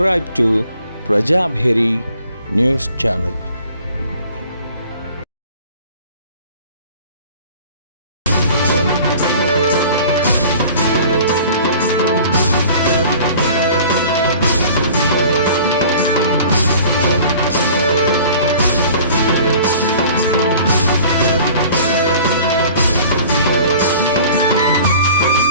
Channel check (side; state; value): both; inverted; correlation -0.47